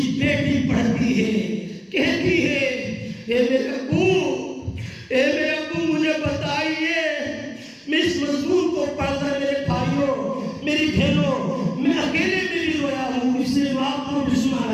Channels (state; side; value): identical; both; correlation 1.00